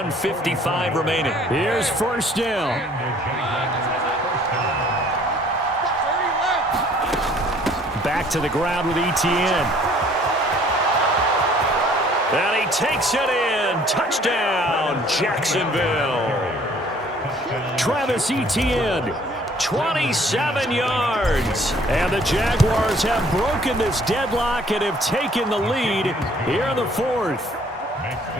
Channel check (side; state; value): both; normal; correlation 0.57